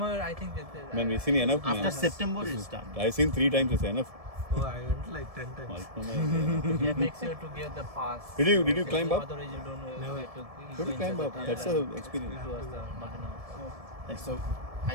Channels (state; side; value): late; left; 1.7 ms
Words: I think that. Man, we've seen enough. After Man. September it starts. I've seen 3 times. It's enough. Oh, I went like 10 times. Yeah, make sure to get the pass. Did you climb up? Otherwise, you don't know where to Go to climb up. That's a experience. It was the Moldinova. Like, so